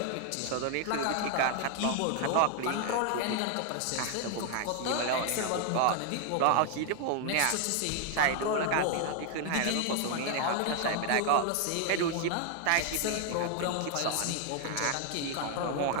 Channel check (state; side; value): different; both; correlation 0.00